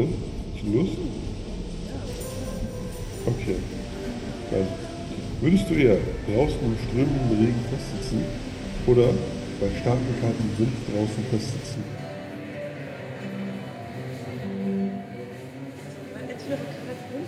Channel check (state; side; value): identical; both; correlation 1.00